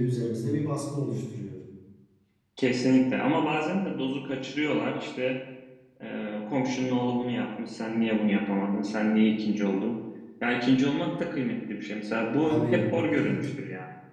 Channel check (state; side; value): identical; both; correlation 1.00